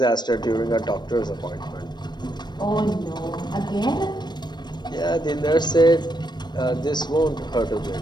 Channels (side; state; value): right; late; 0.21 ms